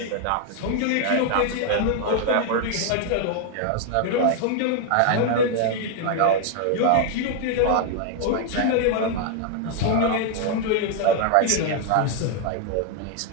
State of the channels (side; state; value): both; different; correlation 0.00